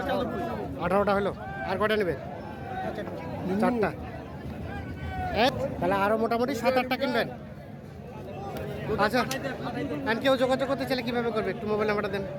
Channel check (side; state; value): both; identical; correlation 1.00